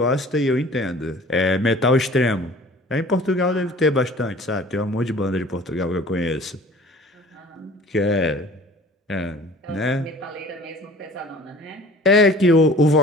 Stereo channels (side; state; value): both; normal; correlation 0.47